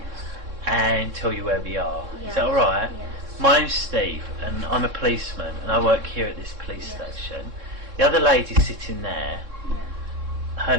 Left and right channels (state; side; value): late; left; 3.6 ms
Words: and tell you where we are. Yes. Is that alright? Yes. My name's Steve and I'm a policeman and I work here at this police Yes. station. The other lady sitting there, Yeah. her